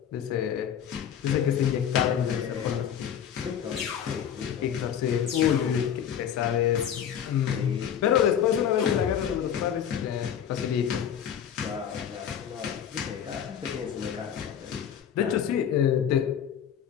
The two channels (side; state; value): right; quieter; 8.9 dB